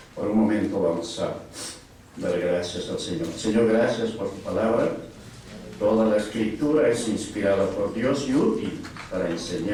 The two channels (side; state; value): both; identical; correlation 1.00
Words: Por un momento vamos a dar gracias al Señor. Señor, gracias por tu palabra. Toda la escritura es inspirada por Dios y útil para